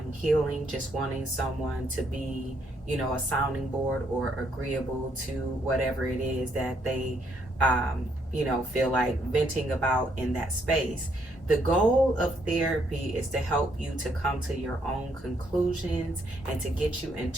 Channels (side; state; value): both; normal; correlation 0.72